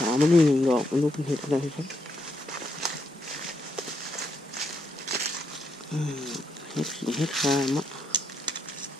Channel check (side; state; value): both; normal; correlation 0.78